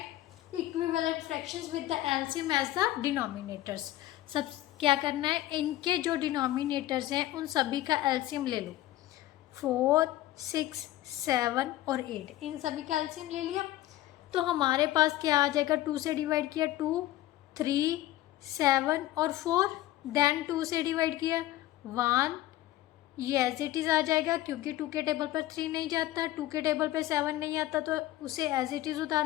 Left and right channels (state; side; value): quieter; right; 15.2 dB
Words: Equivalent fractions with the LCM as the denominators. सब क्या करना है, इनके जो डिनोमिनेटर्स हैं उन सभी का एलसीएम ले लो। 4, 6, 7 और 8, इन सभी का एलसीएम ले लिया तो हमारे पास क्या आ जाएगा? 2 से डिवाइड किया 2, 3, 7 और 4, देन 2 से डिवाइड किया 1, ये एज इट इज़ आ जाएगा क्योंकि 2 के टेबल पर 3 नहीं जाता, 2 के टेबल पर 7 नहीं आता तो उसे एज इट इज़ उतार